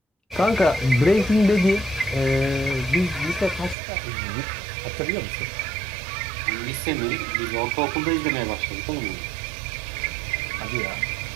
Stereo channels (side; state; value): left; drops out; at 3.8 s